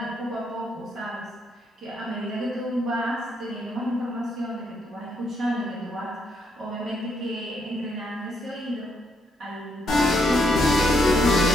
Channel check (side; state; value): both; normal; correlation 0.75